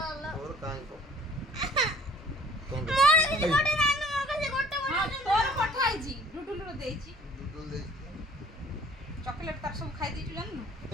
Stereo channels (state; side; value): normal; both; correlation 0.52